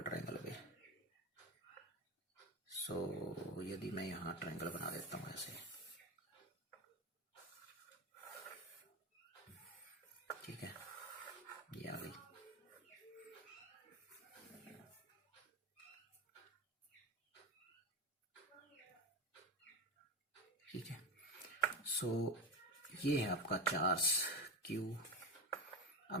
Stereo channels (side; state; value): both; normal; correlation 0.18